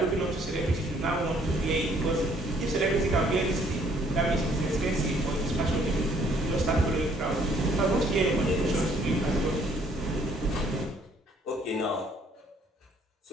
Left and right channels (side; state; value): both; normal; correlation 0.63